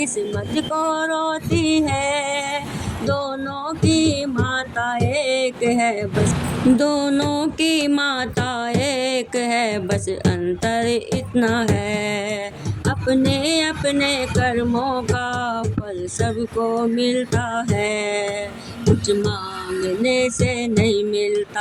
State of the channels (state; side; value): identical; both; correlation 1.00